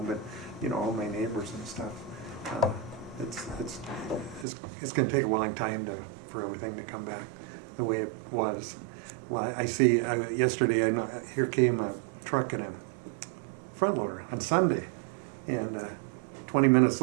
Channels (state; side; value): drops out; left; at 4.5 s